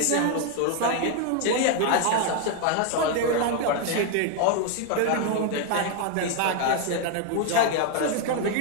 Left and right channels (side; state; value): both; different; correlation 0.01